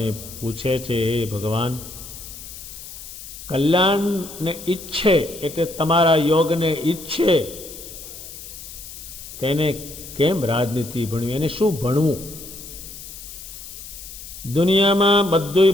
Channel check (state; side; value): noise; left; hiss, 13 dB below the sound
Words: પૂછે છે, હે ભગવાન, કલ્યાણને ઈચ્છે એટલે તમારા યોગને ઈચ્છે તેને કેમ રાજનીતિ ભણવી, એને શું ભણવું? દુનિયામાં બધું